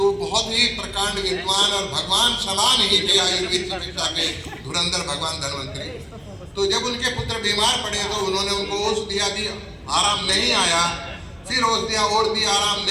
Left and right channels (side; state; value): both; identical; correlation 1.00